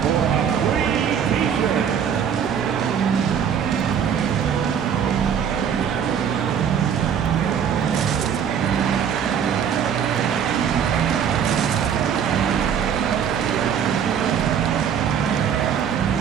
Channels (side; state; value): left; quieter; 8.0 dB